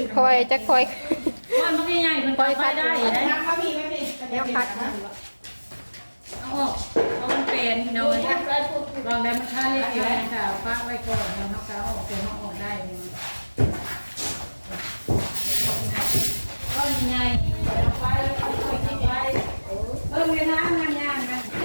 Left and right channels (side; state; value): both; inverted; correlation -1.00